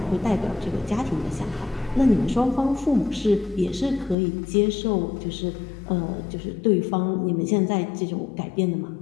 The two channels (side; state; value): right; drops out; at 4.2 s